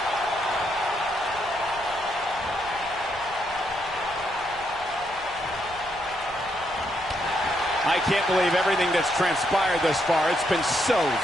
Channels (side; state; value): left; noise; rumble, 20 dB below the sound